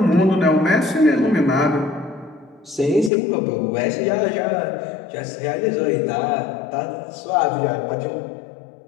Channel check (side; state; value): right; drops out; at 3.1 s